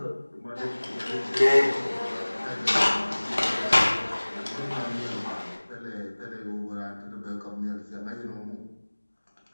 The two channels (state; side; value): inverted; both; correlation -1.00